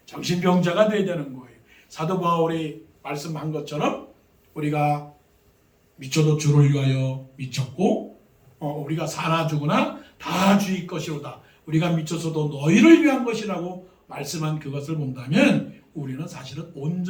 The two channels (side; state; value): both; identical; correlation 1.00